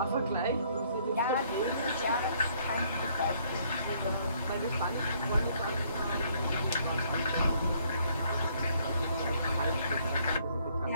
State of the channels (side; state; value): both; inverted; correlation -0.65